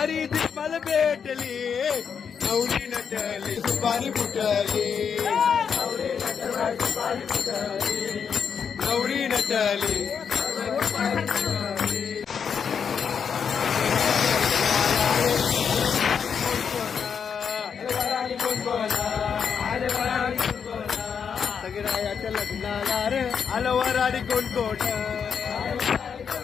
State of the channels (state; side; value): quieter; right; 6.9 dB